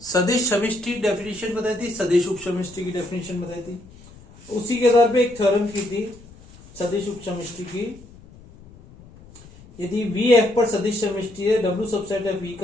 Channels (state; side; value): noise; left; rumble, 22 dB below the sound